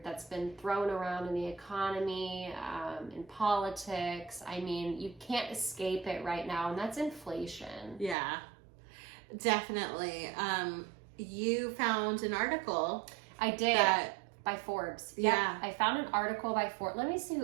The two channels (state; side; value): drops out; left; at 8.2 s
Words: that's been thrown around in the economy, in politics. I mean, you can't escape it right now, and that's inflation. Yeah, definitely. You found an article. I did. By Forbes. Yeah. I found an article by Forbes. Let me see